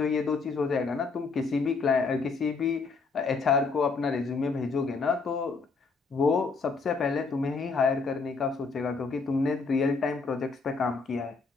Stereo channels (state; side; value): quieter; right; 4.5 dB